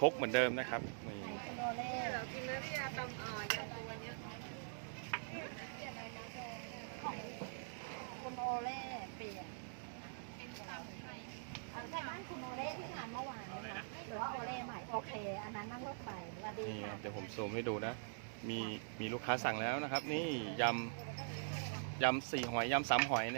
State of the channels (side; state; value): left; silent; digital silence